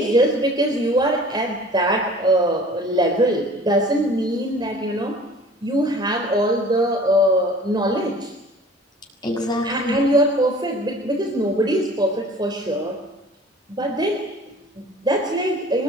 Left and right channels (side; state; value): both; normal; correlation 0.46